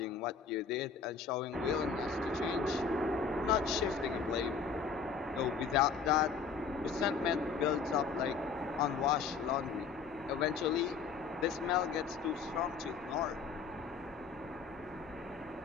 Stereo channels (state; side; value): quieter; right; 5.6 dB